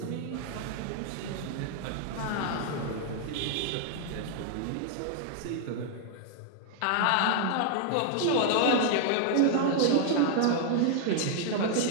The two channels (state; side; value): different; both; correlation -0.01